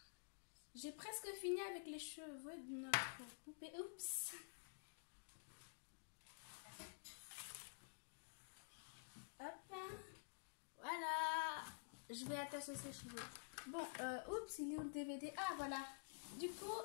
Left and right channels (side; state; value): right; silent; digital silence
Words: j'ai presque fini avec les cheveux de notre poupée. Oups! Hop, voilà, je vais attacher ses cheveux. Bon, oups, il est où le DVD? Ah, voilà. Du coup,